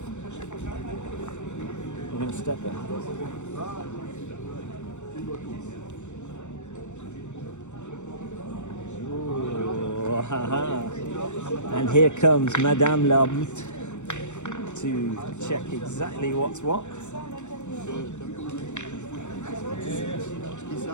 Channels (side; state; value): right; late; 0.84 ms